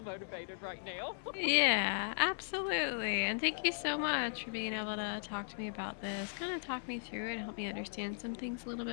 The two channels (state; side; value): silent; right; 53 dB below the other